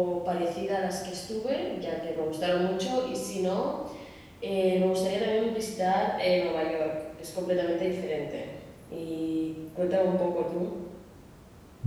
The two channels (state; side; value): identical; both; correlation 1.00